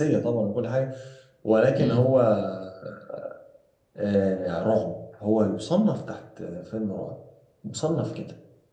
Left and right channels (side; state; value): both; identical; correlation 1.00